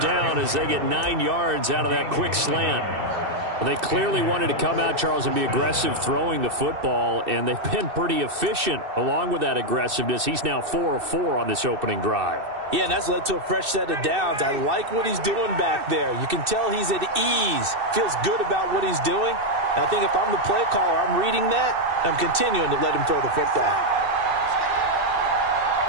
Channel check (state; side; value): late; left; 2.6 ms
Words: down as they get 9 yards out of that quick slant. Well, they clearly wanted to come out, Charles, and be aggressive throwing the football, and they've been pretty efficient along with that aggressiveness. He's now 4 of 4 on this opening drive. Yeah, and that's led to a fresh set of downs. I like what he's doing back there. You can tell he's at ease, feels good about what he's doing. And I think if I'm the play caller, I'm reading that, I'm continuing to let him throw the football.